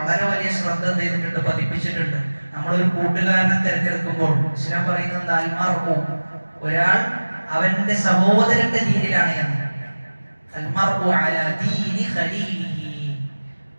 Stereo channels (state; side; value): inverted; both; correlation -1.00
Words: വലിയ ശ്രദ്ധ ചെയ്തിട്ടുണ്ട്, പതിപ്പിച്ചിട്ടുണ്ട്. നമ്മളൊരു കൂട്ടുകാരനെ തിരഞ്ഞെടുക്കുമ്പോൾ ഇസ്ലാം പറയുന്നത് അൽമർഉ, ഒരാൾ അവന്റെ സഹോദരന്റെ ദീനിലാണ് എന്ന്. അൽമർഉ അലാ ദീനി ഖലീലിഹി,